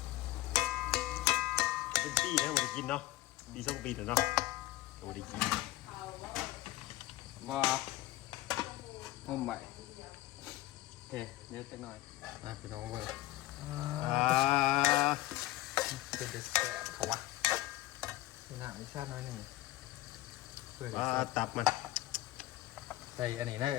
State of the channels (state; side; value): quieter; right; 16.9 dB